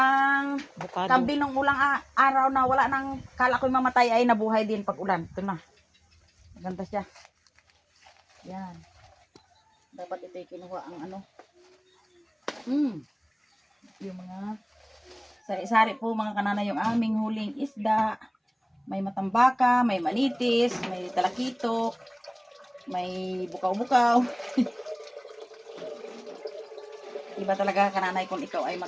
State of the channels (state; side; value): identical; both; correlation 1.00